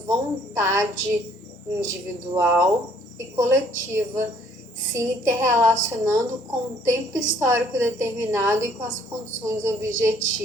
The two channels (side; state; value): both; normal; correlation 0.61